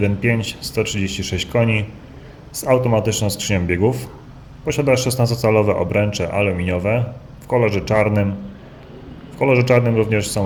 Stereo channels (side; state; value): both; identical; correlation 1.00